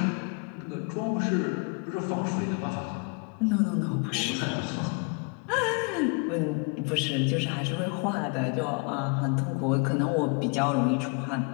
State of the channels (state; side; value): quieter; right; 34.4 dB